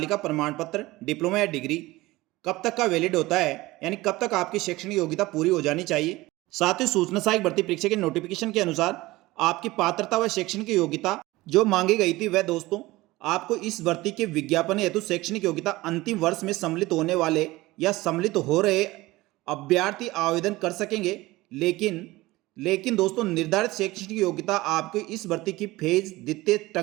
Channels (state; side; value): quieter; left; 19.4 dB